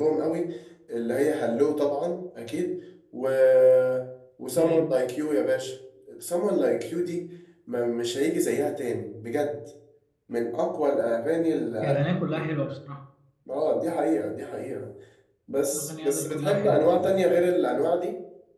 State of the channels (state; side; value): identical; both; correlation 1.00